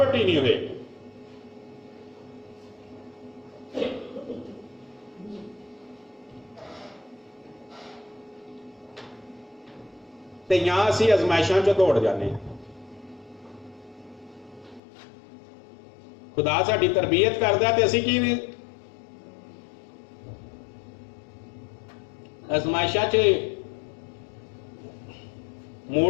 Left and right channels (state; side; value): drops out; right; at 14.8 s